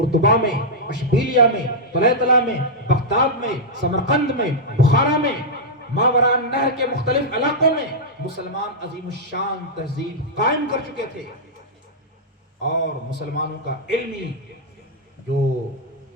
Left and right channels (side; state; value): both; normal; correlation -0.06